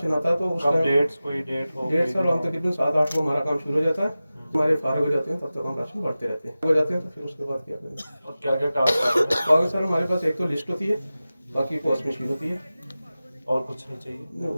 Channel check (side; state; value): both; inverted; correlation -0.96